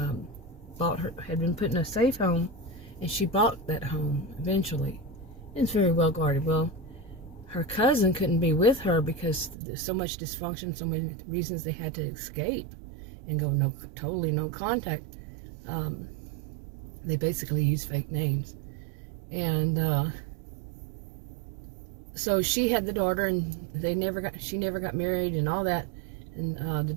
had been put in a safe home, and she bought that home eventually. It's very well guarded. Well, her cousin couldn't be with her because there's so much dysfunction, so many reasons they had to escape and go totally no contact. They basically used fake names. And so she had the daughter, and she never got married and all that. And the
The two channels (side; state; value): left; drops out; at 9.6 s